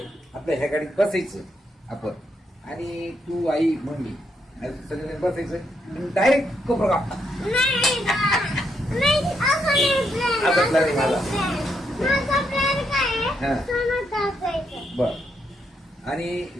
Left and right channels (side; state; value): both; normal; correlation 0.78